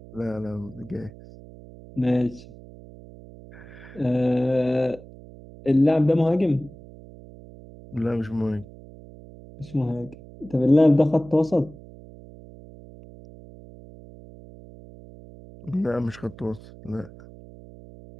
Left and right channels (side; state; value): right; noise; hum, 19 dB below the sound